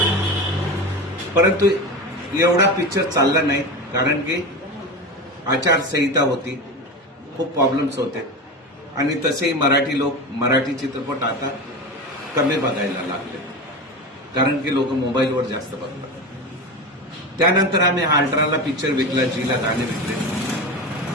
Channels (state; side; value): normal; both; correlation 0.25